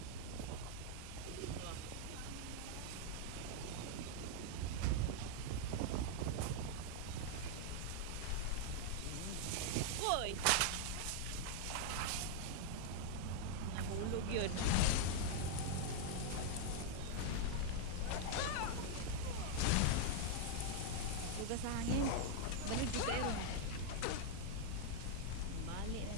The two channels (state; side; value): different; both; correlation -0.01